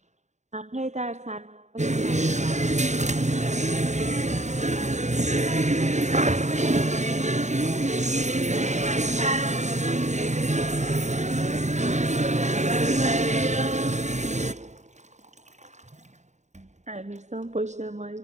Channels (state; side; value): late; left; 0.34 ms